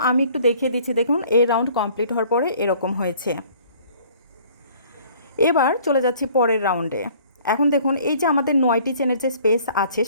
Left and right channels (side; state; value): both; inverted; correlation -0.54